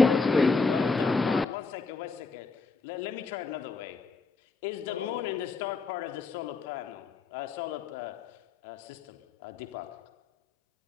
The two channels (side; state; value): right; quieter; 4.2 dB